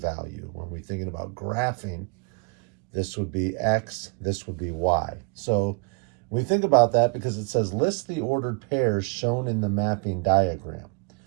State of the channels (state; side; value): quieter; left; 35.8 dB